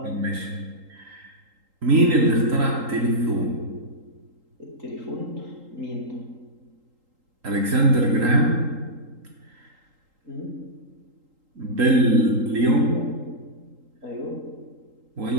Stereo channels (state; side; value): late; left; 3.8 ms